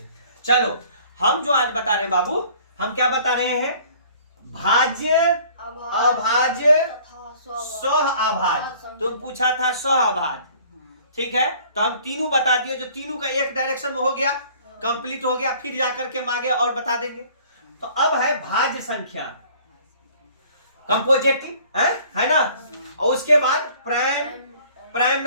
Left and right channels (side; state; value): both; inverted; correlation -0.53